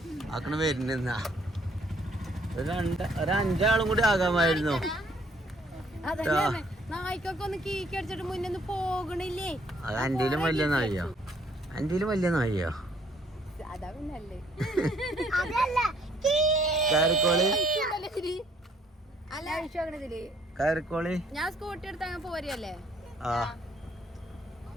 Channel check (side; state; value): both; normal; correlation 0.64